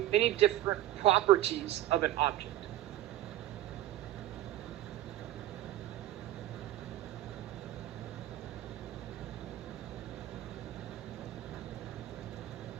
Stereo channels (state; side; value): quieter; left; 14.0 dB